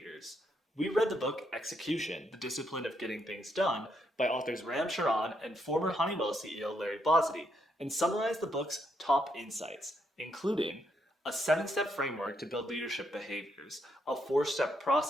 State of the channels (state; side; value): normal; both; correlation 0.76